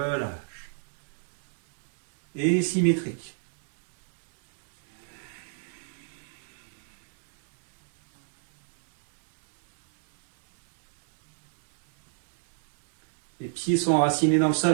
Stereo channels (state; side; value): silent; left; digital silence